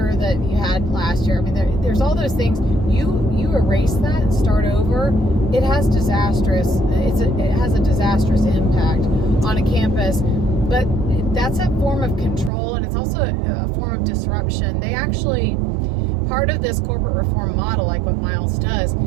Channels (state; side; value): drops out; left; at 12.5 s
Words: that you had last year. I mean, there's all those things. You erase that and start over. It has a disastrous impact on a campus. But that's a form of control, and it's also a form of disruption. They actually, part of this corporate reform model, like what Miles does,